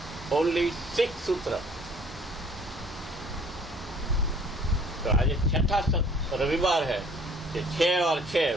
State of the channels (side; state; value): both; normal; correlation 0.55